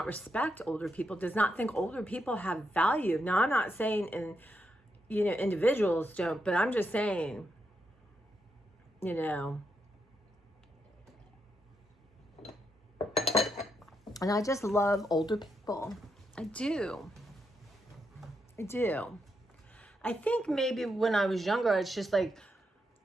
respect older people, does not think older people have value. Now, I'm not saying you know, individuals don't, but I'm just saying, you know, And I just love older people. I do. I do. I think maybe when I was younger, it's just like,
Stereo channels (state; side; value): normal; both; correlation 0.82